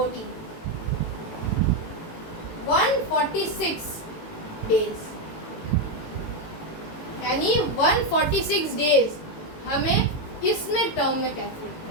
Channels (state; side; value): late; right; 18 ms